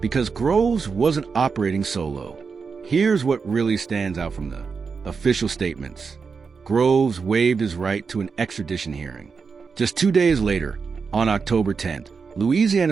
Groves wasn't operating solo. Here's what really stands out from the official statements. Groves waived his right to an extradition hearing. Just 2 days later, on October 10th,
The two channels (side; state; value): left; quieter; 5.3 dB